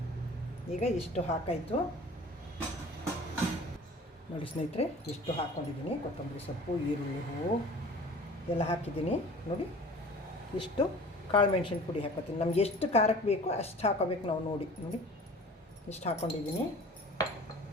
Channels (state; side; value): normal; both; correlation 0.44